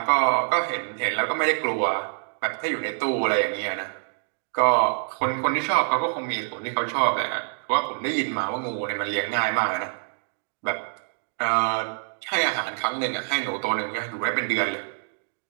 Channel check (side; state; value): left; silent; digital silence